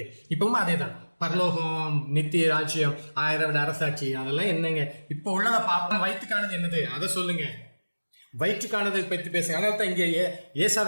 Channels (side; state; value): both; inverted; correlation -1.00